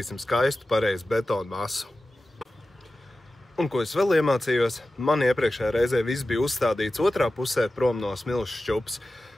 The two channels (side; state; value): both; normal; correlation 0.95